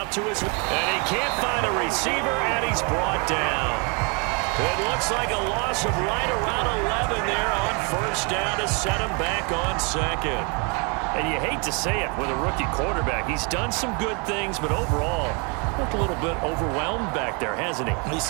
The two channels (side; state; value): left; quieter; 33.5 dB